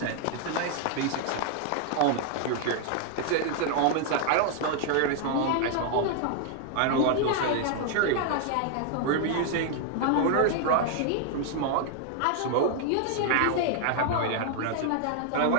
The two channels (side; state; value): both; different; correlation 0.00